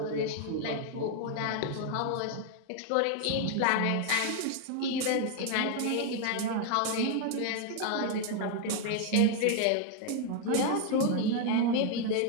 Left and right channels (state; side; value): different; both; correlation 0.00